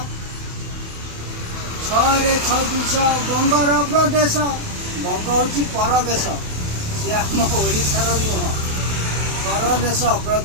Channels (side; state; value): left; late; 28 ms